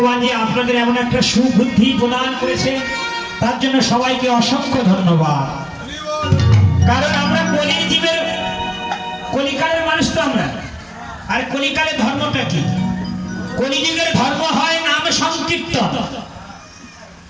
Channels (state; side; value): identical; both; correlation 1.00